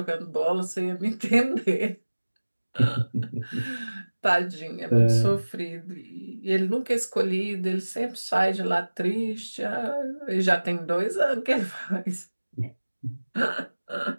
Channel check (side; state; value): both; inverted; correlation -1.00